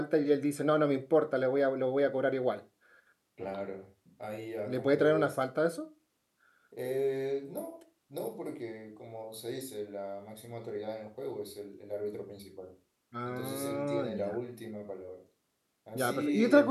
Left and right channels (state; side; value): identical; both; correlation 1.00